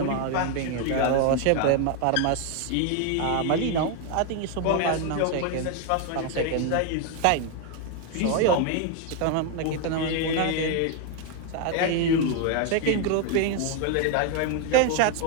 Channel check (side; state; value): both; different; correlation 0.01